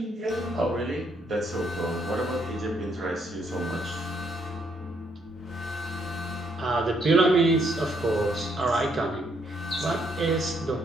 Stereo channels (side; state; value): both; normal; correlation 0.72